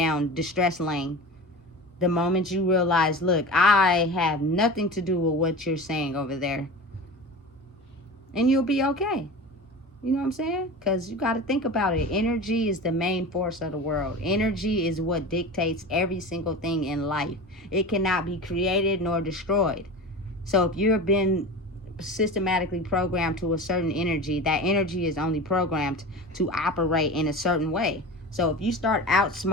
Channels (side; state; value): both; normal; correlation 0.31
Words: distress lane. The moment you realize, look, I have nothing to do with what you're saying over there. And you'll be okay. You know what I'm saying? Because you got to think about it. Energy is the main force of the world. Energy is what dictates every single thing in life. It cannot be created nor destroyed. So if you've been systematically programmed to a certain energy, that energy is only programmed to operate in a certain way. So if you start